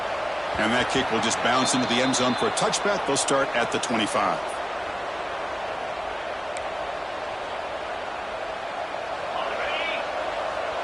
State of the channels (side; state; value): both; identical; correlation 1.00